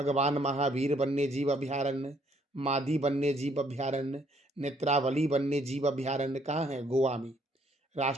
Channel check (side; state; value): both; normal; correlation 0.67